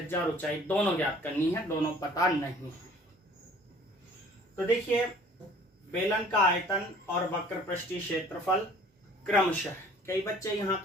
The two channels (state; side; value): normal; both; correlation 0.52